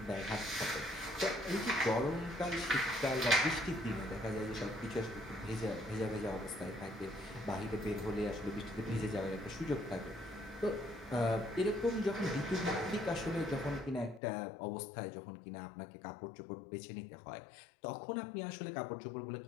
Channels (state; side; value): drops out; right; at 14.2 s